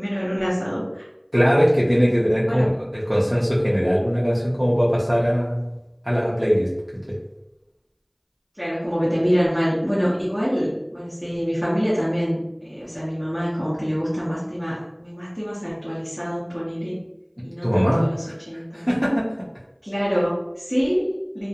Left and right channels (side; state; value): both; identical; correlation 1.00